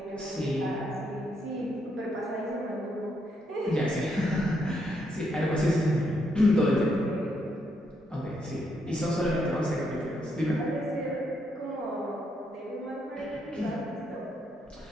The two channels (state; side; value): normal; both; correlation 0.77